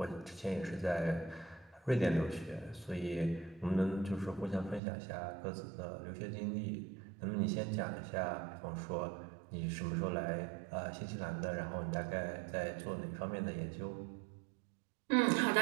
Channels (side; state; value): left; drops out; at 4.8 s